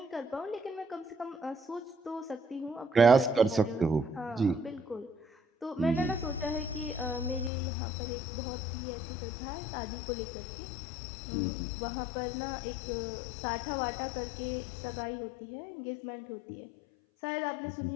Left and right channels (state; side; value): drops out; right; at 7.5 s